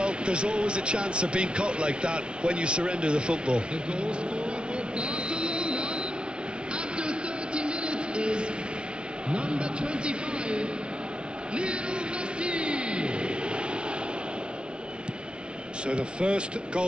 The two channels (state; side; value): late; left; 0.056 ms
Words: there's always a chance of being caught like that when you surrender the football. The goal scorer for Barcelona after 30 minutes is number 25, Lionel Messi. So the first